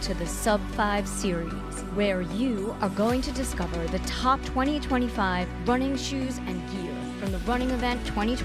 to the Sub 5 series, where you are going to discover the top 2025 running shoes and gear from the running event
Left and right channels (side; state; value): both; identical; correlation 1.00